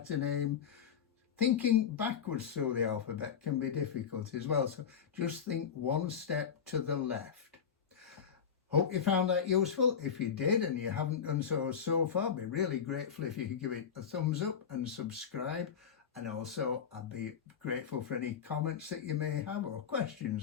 name. Thinking backwards through the alphabet can be difficult as well, so just think 1 step to the left. Hope you found that useful. If you did and you haven't done so far, I'd be really grateful if you could give it a thumbs up and subscribe. And also I'd be grateful for any comments that you may have or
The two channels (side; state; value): right; quieter; 7.4 dB